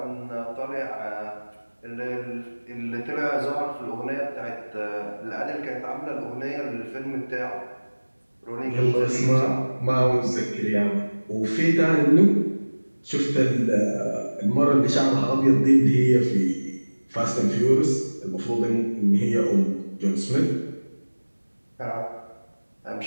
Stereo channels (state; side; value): inverted; both; correlation -1.00